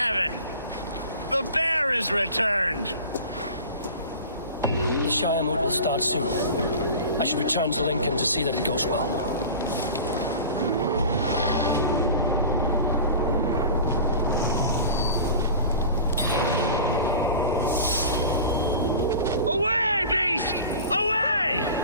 The bear is returned! The Shire mood will start soon. I should return to Lincoln to see that it goes well. Away, beast! Away!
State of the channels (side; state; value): both; inverted; correlation -0.37